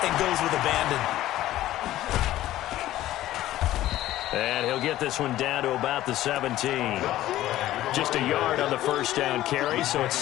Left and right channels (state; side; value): quieter; right; 14.5 dB